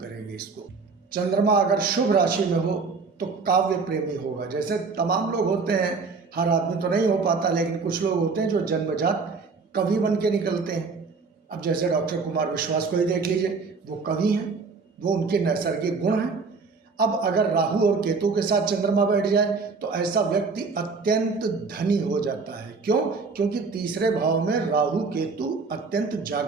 इसको। चंद्रमा अगर शुभ राशि में हो तो काव्य प्रेमी होगा। जैसे तमाम लोग होते हैं, हर आदमी तो नहीं हो पाता, लेकिन कुछ लोग होते हैं जो जन्मजात कवि बन के निकलते हैं। अब जैसे डॉक्टर कुमार विश्वास को ही देख लीजिए, वो कवि हैं, वो उनके नैसर्गिक गुण हैं। अब अगर राहु और केतु के साथ चंद्रमा बैठ जाए तो ऐसा व्यक्ति अत्यंत धनी हो जाता है। क्यों? क्योंकि तीसरे भाव में राहु केतु अत्यंत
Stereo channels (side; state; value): left; quieter; 4.6 dB